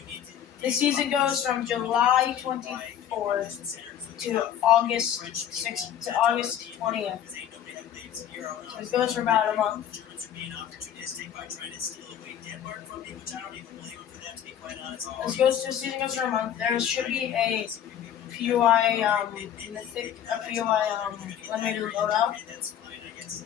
The season goes from July 24th to August 6th to August 20th. So it goes for about a month. This goes to season goes for a month. There should be a PUI mythic, a PUI limited loadout.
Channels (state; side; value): quieter; right; 9.9 dB